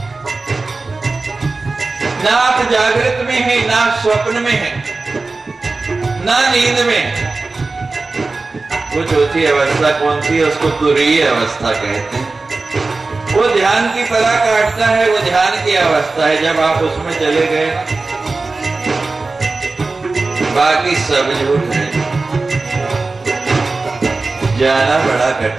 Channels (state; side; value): quieter; left; 3.6 dB